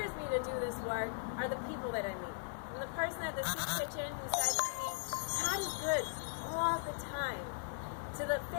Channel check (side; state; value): right; silent; digital silence